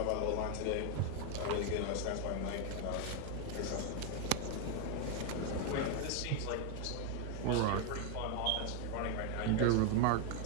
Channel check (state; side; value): different; both; correlation 0.01